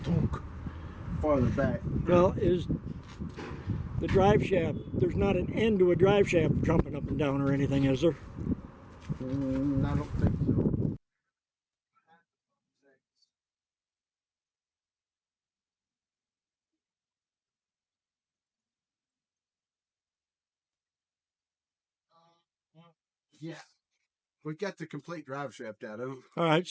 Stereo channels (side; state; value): both; identical; correlation 1.00